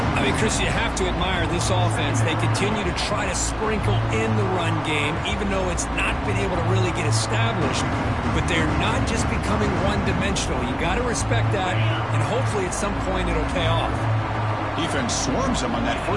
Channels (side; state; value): both; identical; correlation 1.00